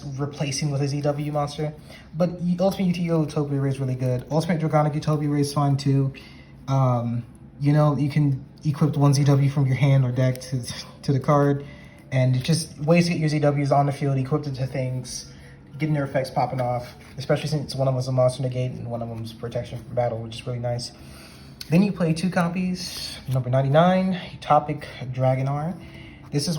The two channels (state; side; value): identical; both; correlation 1.00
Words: replacing with a ZW monster. But Ultimate Utopia Ray is really good. Ultimate Draconic Utopia Ray is fine too. You can equip 1 ZW from your hand or deck to the card. And it's just ways to get your ZWs on the field, equipped into things, getting their effects popping off. Especially since one of them is a monster negate and one of them is protection from battle, which is really nice. Then you play 2 copies. Number 99, Utopic Dragonar. This is